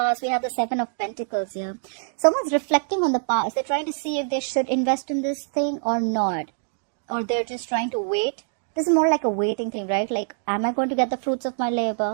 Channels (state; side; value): silent; left; digital silence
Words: We have the Seven of Pentacles here. Someone's reflecting on the past. They're trying to see if they should invest in this thing or not. Or they're just trying to wait. This is more like a waiting thing, right? Like, am I going to get the fruits of my